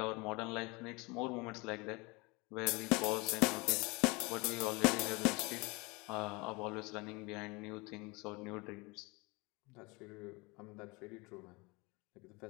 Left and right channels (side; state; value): right; quieter; 26.1 dB